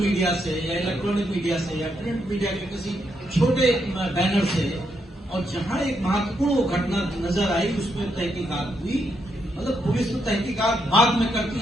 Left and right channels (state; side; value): normal; both; correlation 0.79